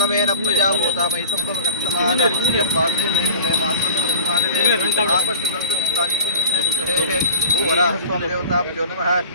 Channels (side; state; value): both; inverted; correlation -0.39